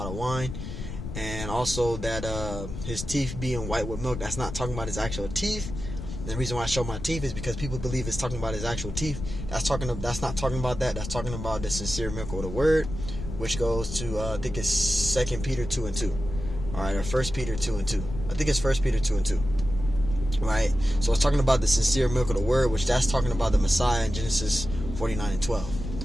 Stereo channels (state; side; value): noise; left; rumble, 8 dB below the sound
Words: of wine. And also that his teeth being white with milk, that's not talking about his actual teeth. And the reason why I show my teeth is because people believe it's talking about his actual teeth. That's not talking about that. That's talking about the sincere milk of the word, which goes to, I think it's 2 Peter 2 and 2. Alright, or 1 Peter 2 and 2. I think it's 1 Peter 2 and 2. Right? So it's talking about the sincere milk of the word, which that's talking about the Messiah in Genesis 49 and 12.